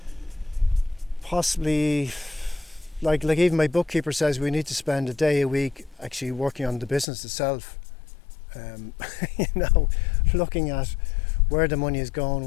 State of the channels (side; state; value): right; drops out; at 7.1 s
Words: possibly like even my bookkeeper says we need to spend a day a week actually working on the business itself. Looking at where the money is going,